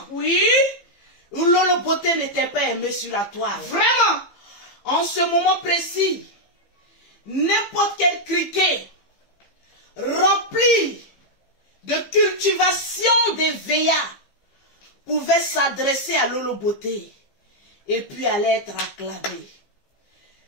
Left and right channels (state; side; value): late; right; 15 ms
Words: Oui. où Lolo Beauté n'était pas aimé sur la toile. Vraiment. En ce moment précis, n'importe quel criquet rempli de cultivation des VA pouvait s'adresser à Lolo Beauté et puis allait être acclamé.